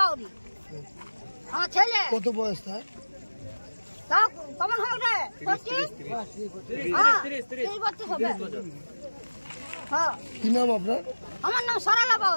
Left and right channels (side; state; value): both; inverted; correlation -1.00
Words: আমার ছেলে। কত বয়স তার? তাও কেমন হবে রে? 30 বছর হবে। হ্যাঁ। কি নাম আপনার? আমার নাম সরলা